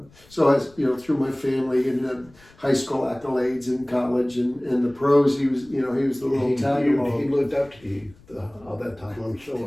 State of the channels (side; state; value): left; noise; rumble, 27 dB below the sound